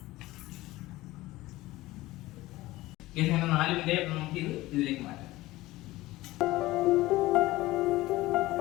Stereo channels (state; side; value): quieter; right; 18.2 dB